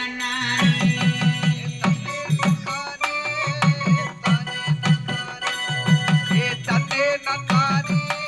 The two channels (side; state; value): both; identical; correlation 1.00